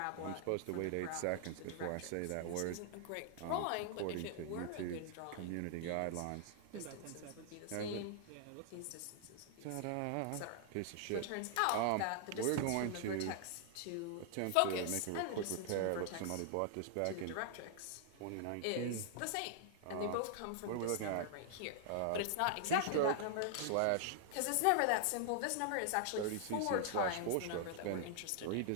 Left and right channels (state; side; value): different; both; correlation 0.00